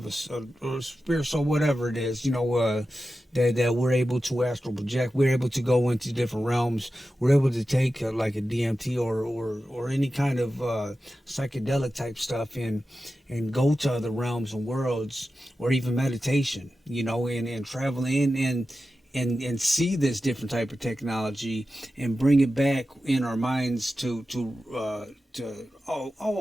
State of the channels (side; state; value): both; normal; correlation 0.92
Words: a spirit. So whatever it is, that we're able to astral project. We're able to go into different realms. We're able to take like a DMT or any kind of psychedelic type stuff and go to other realms and worlds, or even meditation. And travel in and see this different type of technology and bring it back in our minds to